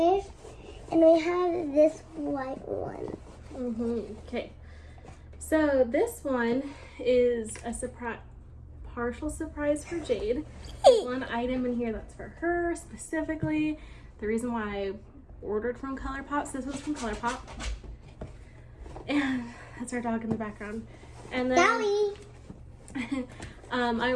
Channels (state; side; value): identical; both; correlation 1.00